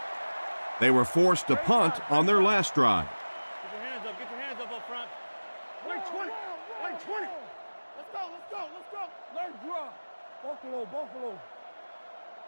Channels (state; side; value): inverted; both; correlation -1.00